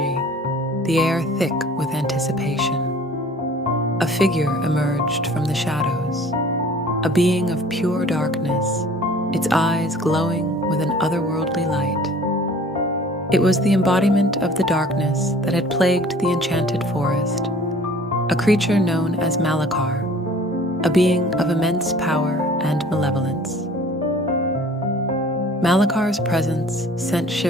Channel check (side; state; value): both; normal; correlation 0.49